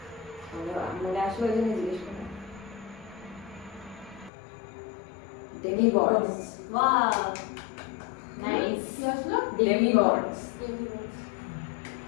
মনে আসলো ওই জন্য জিজ্ঞেস করলাম। ডেমিগডস। Wow, nice. কি আসলো? ডেমিগডস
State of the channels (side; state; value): right; drops out; at 4.3 s